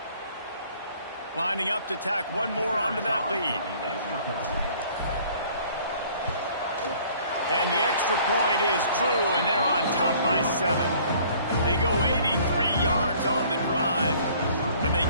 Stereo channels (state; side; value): inverted; both; correlation -0.55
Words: Lining up to tack one more onto that lead. And the extra point is true, and they're on top by 7. They go 83 yards on the drive, and they